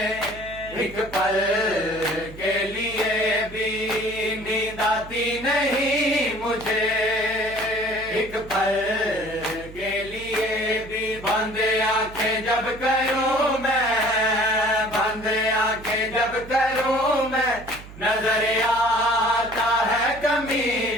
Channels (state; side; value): noise; right; hum, 16 dB below the sound